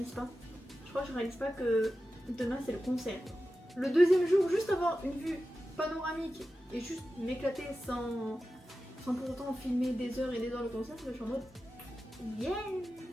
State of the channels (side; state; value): both; normal; correlation 0.93